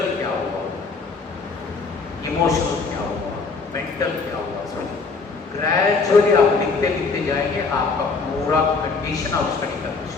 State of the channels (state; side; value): quieter; right; 4.4 dB